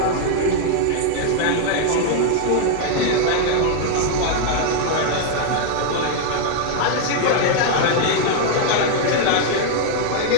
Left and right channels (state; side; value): different; both; correlation 0.00